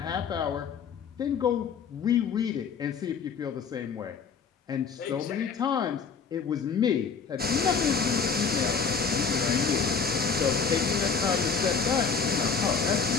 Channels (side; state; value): right; quieter; 5.8 dB